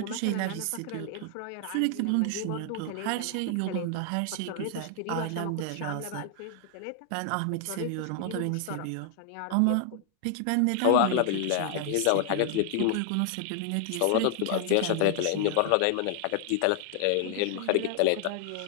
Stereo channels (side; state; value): both; different; correlation 0.00